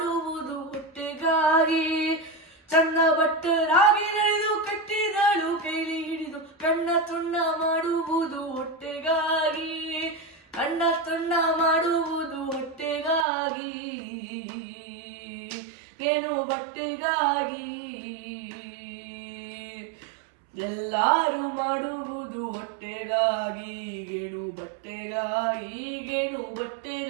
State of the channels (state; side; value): drops out; left; at 13.2 s